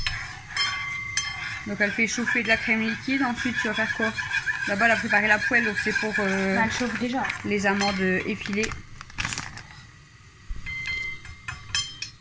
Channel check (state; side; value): identical; both; correlation 1.00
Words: Donc elle fait chauffer de la crème liquide. Ensuite, tu vas faire quoi? Là-bas, elle a préparé la poêle. Donc c'est pour Bah, elle chauffe déjà. les amandes effilées.